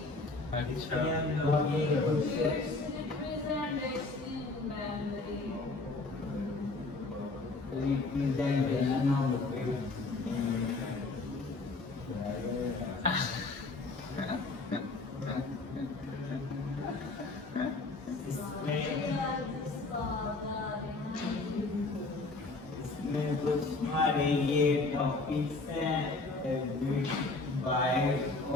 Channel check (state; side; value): quieter; right; 3.4 dB